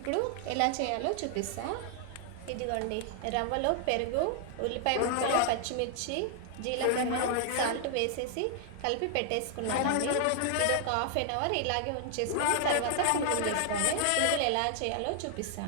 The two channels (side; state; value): both; different; correlation 0.00